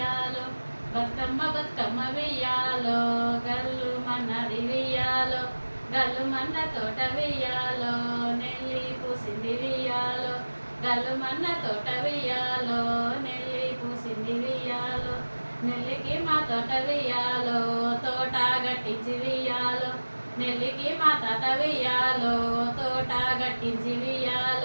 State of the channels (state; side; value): inverted; both; correlation -1.00